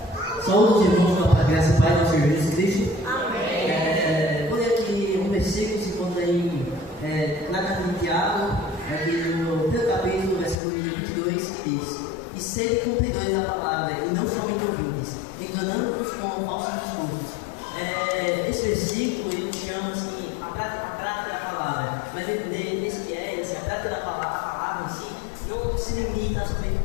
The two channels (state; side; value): drops out; right; at 10.6 s